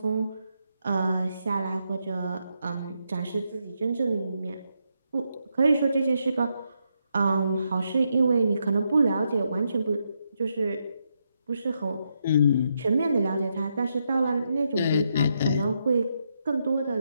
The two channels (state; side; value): inverted; both; correlation -0.81